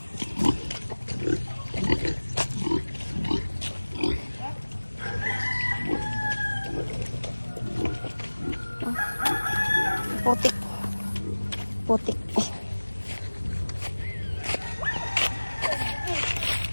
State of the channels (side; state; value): both; inverted; correlation -1.00